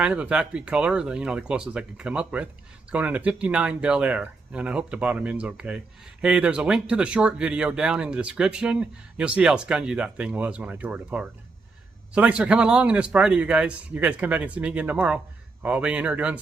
of a factory color, the closest I could come up with. It's going into 59 Bel Air, and I hope the bottom end's okay. Hey, there's a link to the short video down in the description. You'll see how spongy that thing was when I tore it apart. So thanks for coming along on this Friday, you guys. You guys come back and see me again tomorrow. I'll be in here doing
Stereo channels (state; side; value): quieter; left; 3.8 dB